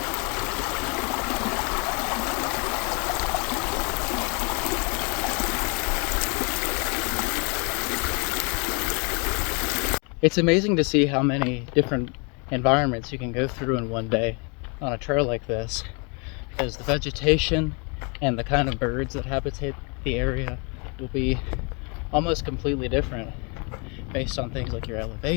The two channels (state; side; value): quieter; right; 33.5 dB